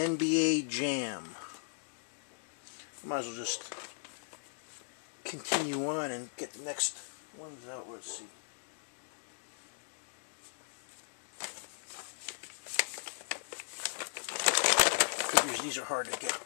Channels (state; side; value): silent; right; digital silence